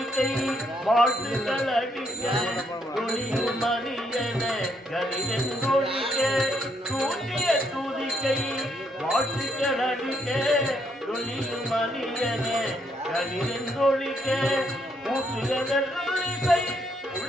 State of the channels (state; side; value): normal; both; correlation 0.73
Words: வாழ்த்துக்கள் அடிக்க துணியும் மணியன கலிதொழிக்க, தூக்கிய தூதிக்கை வாழ்த்துக்கள் அடிக்க துணியும் மணியன கலிதொழிக்க, ஊற்றுகை